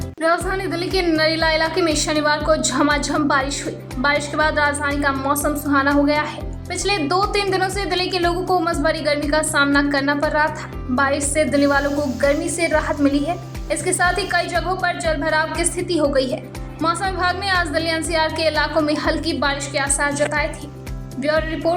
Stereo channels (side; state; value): both; identical; correlation 1.00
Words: राजधानी दिल्ली के नरेला इलाके में शनिवार को झमाझम बारिश हुई। बारिश के बाद राजधानी का मौसम सुहाना हो गया है। पिछले 2-3 दिनों से दिल्ली के लोगों को उमस भरी गर्मी का सामना करना पड़ रहा था। बारिश से दिल्ली वालों को गर्मी से राहत मिली है। इसके साथ ही कई जगहों पर जलभराव की स्थिति हो गई है। मौसम विभाग ने आज दिल्ली एनसीआर के इलाकों में हल्की बारिश के आसार जताए थे। ब्यूरो